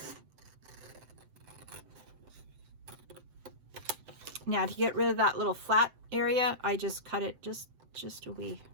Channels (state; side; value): late; left; 7.8 ms